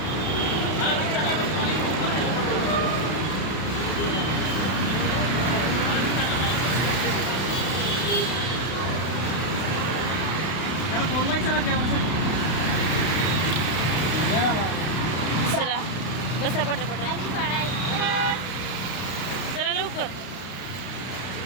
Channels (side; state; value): right; late; 32 ms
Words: चला बसा पटापट. आणि फळाई. चला लवकर.